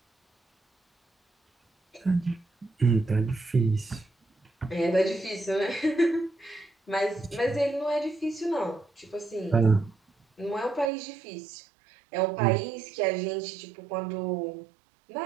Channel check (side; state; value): left; drops out; at 10.9 s